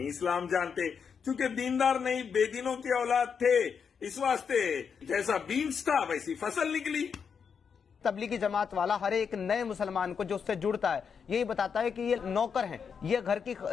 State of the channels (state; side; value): quieter; right; 6.5 dB